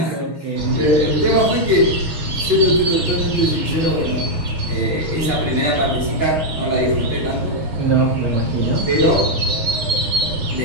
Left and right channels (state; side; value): late; left; 6.3 ms